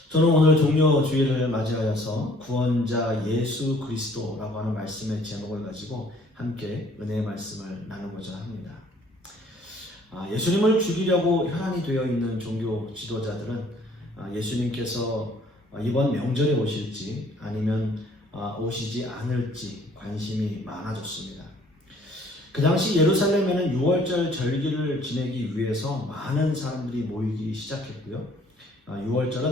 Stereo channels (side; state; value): both; normal; correlation 0.58